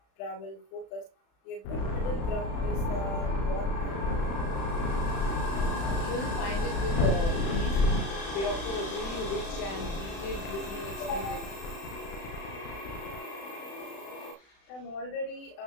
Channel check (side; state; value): right; late; 36 ms